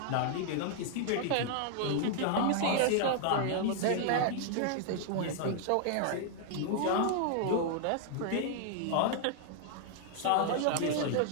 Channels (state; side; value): different; both; correlation 0.00